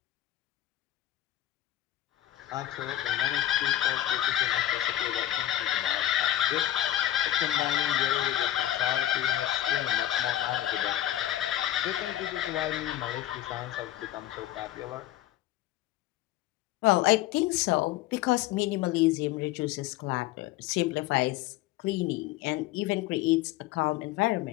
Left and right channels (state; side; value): quieter; right; 13.3 dB